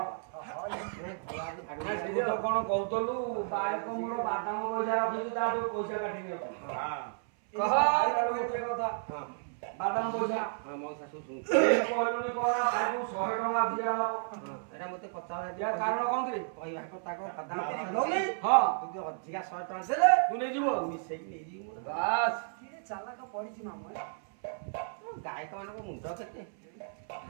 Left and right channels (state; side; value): silent; left; 56 dB below the other